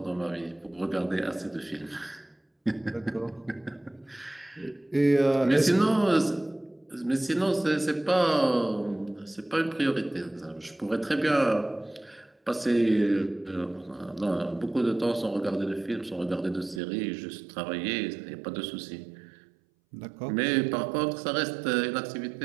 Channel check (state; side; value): drops out; left; at 16.8 s